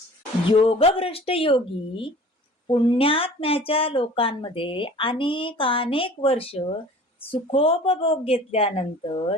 योगभ्रष्ट योगी पुण्यात्म्याच्या लोकांमध्ये अनेक वर्ष सुखोपभोग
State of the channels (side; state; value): both; normal; correlation 0.45